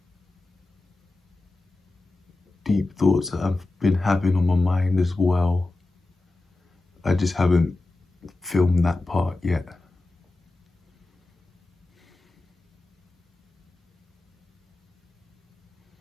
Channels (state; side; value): quieter; right; 3.0 dB